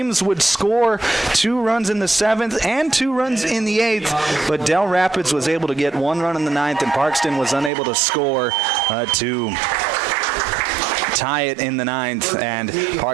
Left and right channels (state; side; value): drops out; left; at 7.7 s